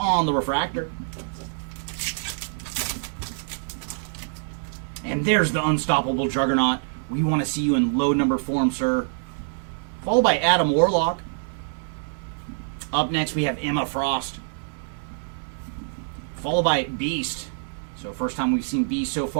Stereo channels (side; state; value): left; silent; digital silence